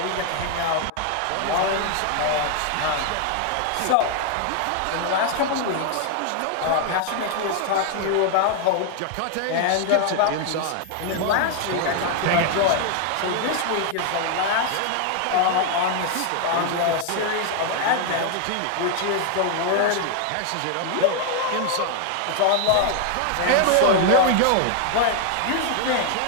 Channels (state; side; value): different; both; correlation 0.00